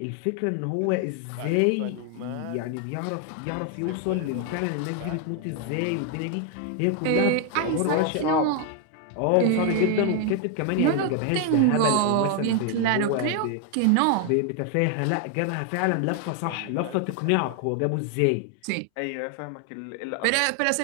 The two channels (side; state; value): both; different; correlation 0.00